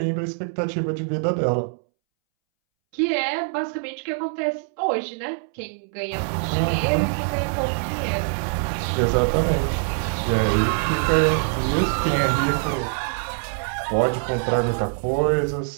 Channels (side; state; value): left; silent; 63 dB below the other